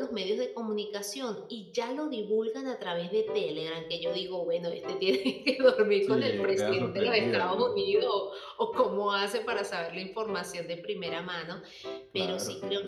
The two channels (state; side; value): identical; both; correlation 1.00